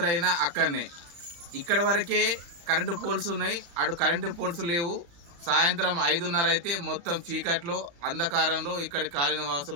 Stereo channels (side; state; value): left; late; 35 ms